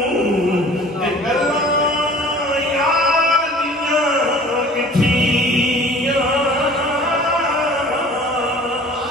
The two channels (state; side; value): normal; both; correlation 0.46